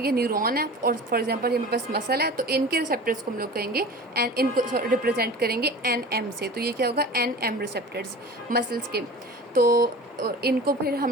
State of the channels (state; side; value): normal; both; correlation 0.37